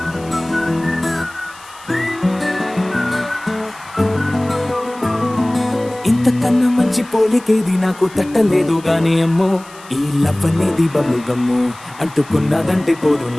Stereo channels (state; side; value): noise; left; hiss, 22 dB below the sound